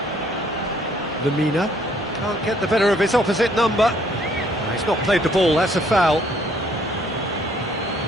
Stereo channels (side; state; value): both; normal; correlation 0.64